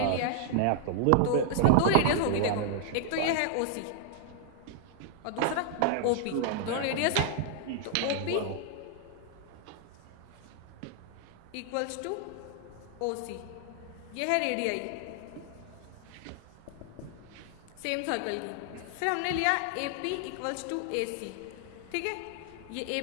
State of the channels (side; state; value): both; different; correlation 0.00